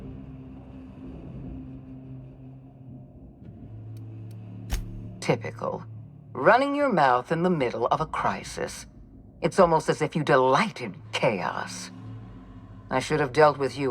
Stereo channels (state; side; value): identical; both; correlation 1.00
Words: Typical. Running your mouth in the middle of a crisis. It's almost as if you delight in chaos. I should have dealt with